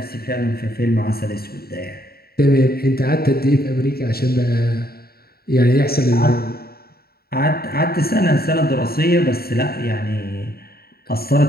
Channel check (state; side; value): late; right; 0.45 ms